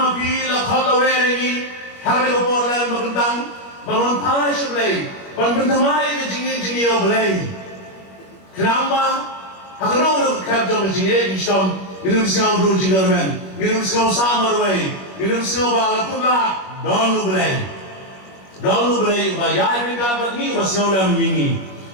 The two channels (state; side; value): late; right; 21 ms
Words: kalaweri hari ko por lan magandang bangon pai sa play. Pagbantamay ka jingi o play. Kenapa? Hakano ka jong jingi istom minum singaw do jingarmen. Minum singaw samar way. Minum singaw balatula donu play. Donu play ba yai pinga bagni ba singaw lam yingi.